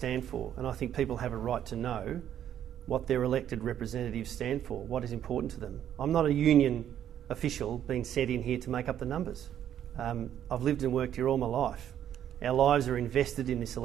for, and I think people have a right to know what their elected representatives stand for, what is important to them. I'm not a union official being sent in here to make up the numbers. I've lived and worked here all my life. Our lives are invested in this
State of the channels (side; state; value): left; quieter; 10.3 dB